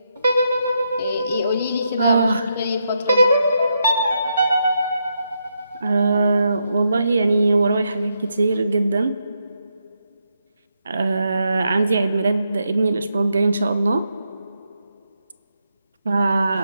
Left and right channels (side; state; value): both; inverted; correlation -0.82